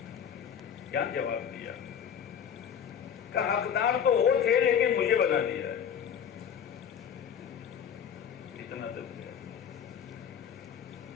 کیا جواب دیا؟ کہ حقدار تو وہ تھے لیکن مجھے بنا دیا ہے. اتنا تک.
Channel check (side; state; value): right; quieter; 8.2 dB